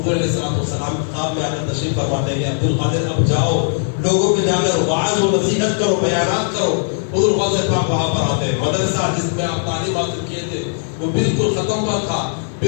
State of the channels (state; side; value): silent; right; digital silence